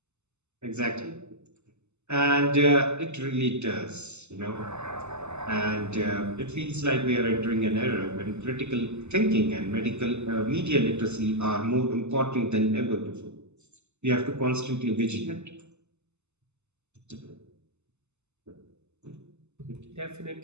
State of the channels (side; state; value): left; late; 0.82 ms